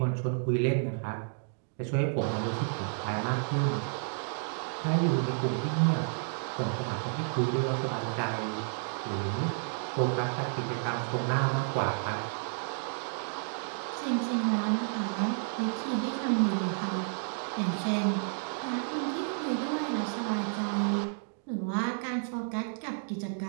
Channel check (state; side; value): silent; left; digital silence